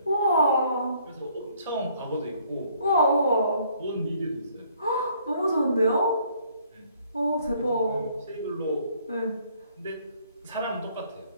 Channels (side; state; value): both; inverted; correlation -0.63